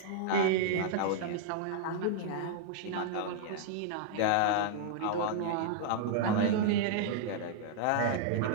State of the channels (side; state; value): both; different; correlation -0.01